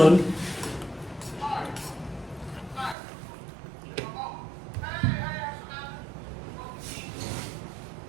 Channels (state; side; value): drops out; left; at 3.0 s